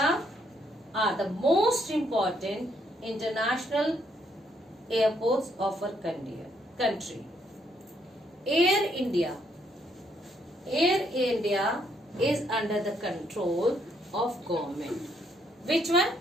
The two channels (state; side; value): normal; both; correlation 0.72